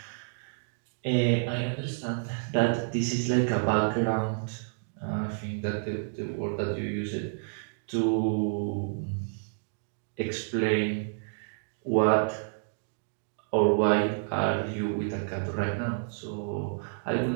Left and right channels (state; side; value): silent; left; digital silence